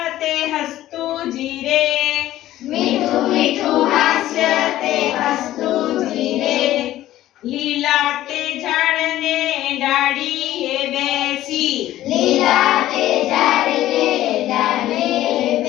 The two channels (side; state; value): right; quieter; 14.2 dB